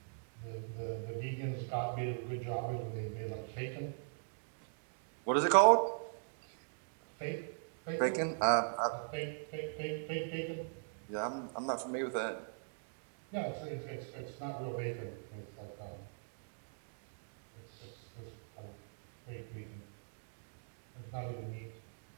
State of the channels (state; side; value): silent; left; digital silence